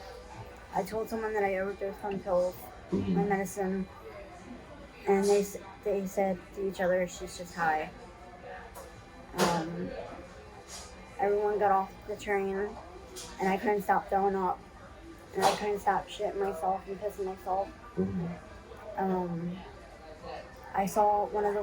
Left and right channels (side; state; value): both; identical; correlation 1.00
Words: I told someone that I overdosed on pills, my Hmm. medicine, and they said to each other, "She's just high." Um, Everyone got off the train, and I couldn't stop throwing up, and I couldn't stop shitting myself and pissing myself. Hmm. Um, I saw one